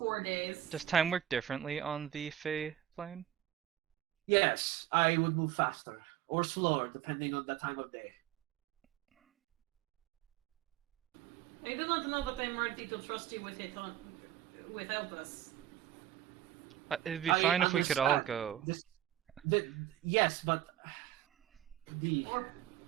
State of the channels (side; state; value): left; quieter; 12.5 dB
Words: days. Does time work differently on the Fae plane? Yes, I would move faster or slower depending on the time of day. I do not know that I'm ready to trust you with it without us. It'd be I fine if we could all understand. go. Yes, but Or